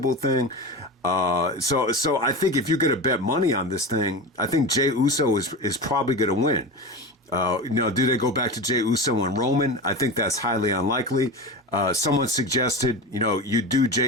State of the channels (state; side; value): normal; both; correlation 0.26